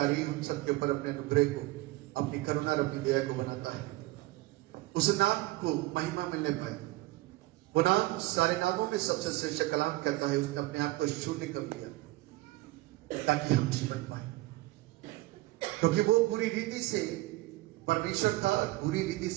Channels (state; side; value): quieter; left; 19.1 dB